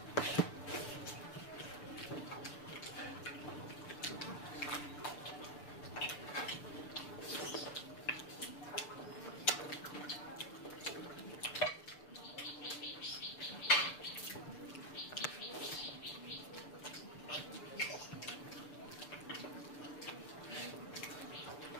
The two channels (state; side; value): late; right; 6.8 ms